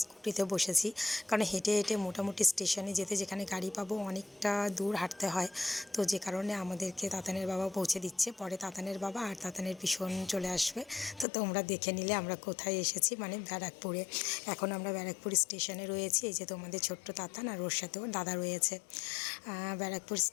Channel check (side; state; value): right; drops out; at 11.2 s